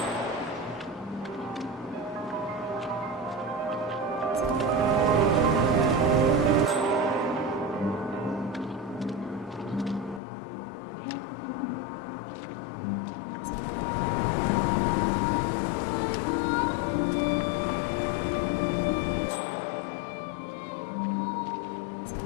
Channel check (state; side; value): drops out; right; at 10.2 s